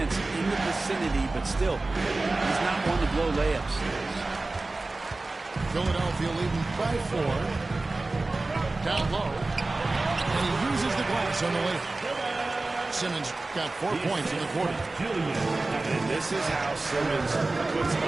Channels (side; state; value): left; quieter; 3.2 dB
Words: in the vicinity, but still, he's not one to blow layups. Philadelphia leading by 4. Down low. And he uses the glass on the layup. Simmons got 4 points in the quarter. And this is how Simmons puts